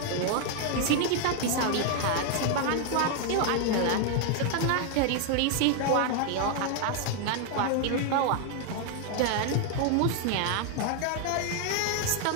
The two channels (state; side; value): different; both; correlation 0.00